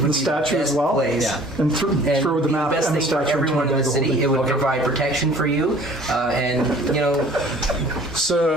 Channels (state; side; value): normal; both; correlation 0.51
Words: be statue the as best well? place. Yeah. And And throw the map best and the thing for statue into my everyone in bag the of city. holding. It would provide protection for you, and